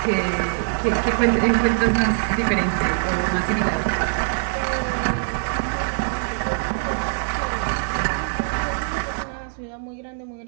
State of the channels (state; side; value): silent; left; digital silence